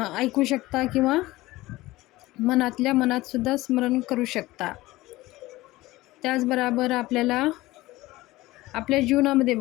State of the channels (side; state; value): right; quieter; 18.6 dB